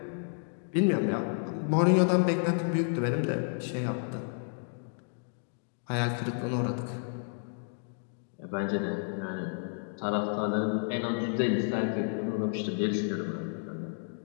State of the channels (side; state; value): right; silent; 57 dB below the other